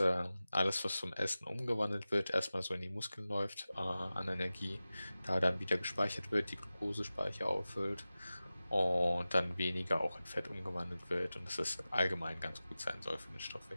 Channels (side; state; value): both; inverted; correlation -0.96